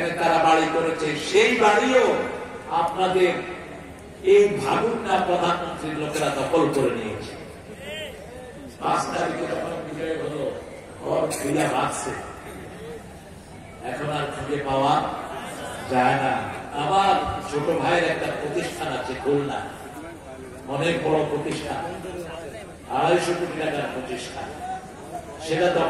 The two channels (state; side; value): identical; both; correlation 1.00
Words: তারা বাড়ি করেছে। সেই বাড়িও আপনাদের এই ভাগুন না প্রধানমন্ত্রীর লোকেরা দখল করে নিয়েছে। 5 তারিখে যখন বিজয় হলো, ঘর খুলে রাখছে, এখন আর খুঁজে পাওয়া যায় না। আমার ছোট ভাইয়ের একটা প্রতিষ্ঠান আছে খুলনা, অনেক বড় প্রতিষ্ঠান, 250 কোটি টাকার প্রতিষ্ঠান, সেটা